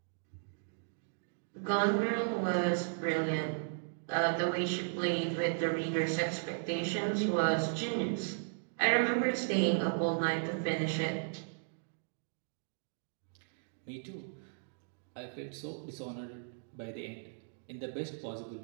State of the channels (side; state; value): left; silent; digital silence